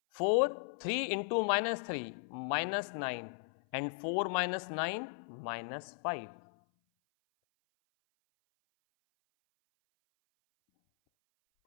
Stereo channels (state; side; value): silent; right; 54 dB below the other